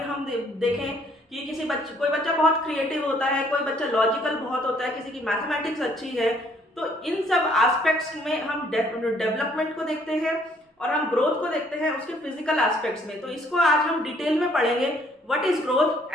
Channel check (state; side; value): normal; both; correlation 0.64